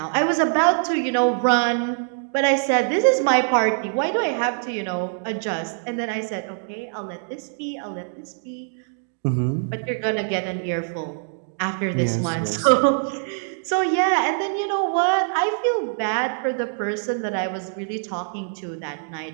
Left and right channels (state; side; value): silent; left; digital silence